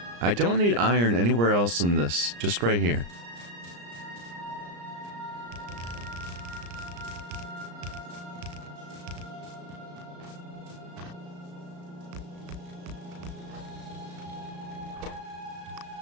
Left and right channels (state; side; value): late; left; 34 ms